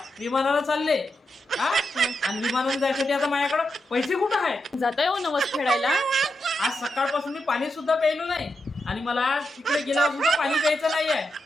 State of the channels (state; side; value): normal; both; correlation 0.86